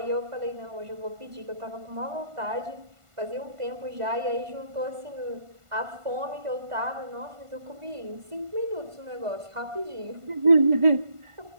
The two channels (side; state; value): left; late; 1.5 ms